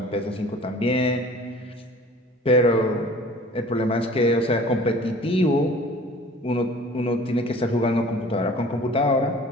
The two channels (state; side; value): normal; both; correlation 0.47